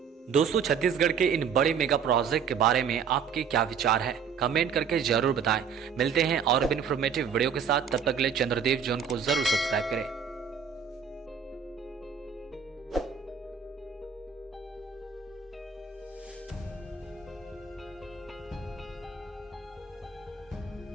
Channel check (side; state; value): left; quieter; 6.8 dB